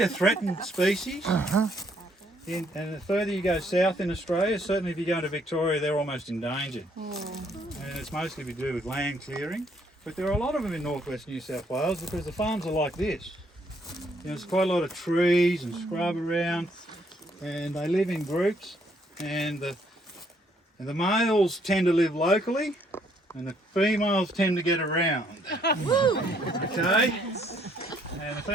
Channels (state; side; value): normal; both; correlation 0.68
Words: a threatened species. And the further you go south in Australia, certainly if you go to Victoria, they're almost endangered. And it's mostly to do with land clearing. But there are a lot of them in northwest New South Wales because the farms are like this. There's quite a lot of trees and scrub around, and they live in groups. And the males tend to live locally, and the females tend to get around. Okay? And the